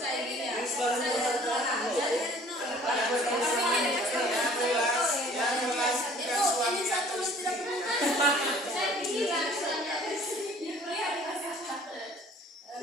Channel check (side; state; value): both; normal; correlation 0.53